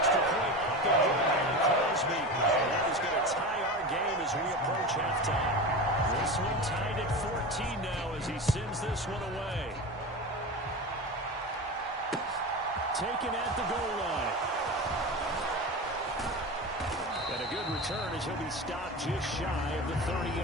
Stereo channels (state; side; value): normal; both; correlation 0.26